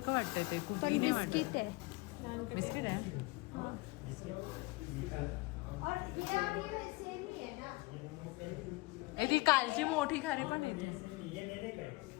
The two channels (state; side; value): quieter; right; 23.6 dB